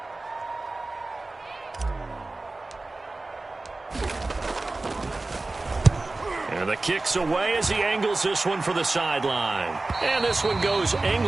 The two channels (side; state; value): left; quieter; 3.2 dB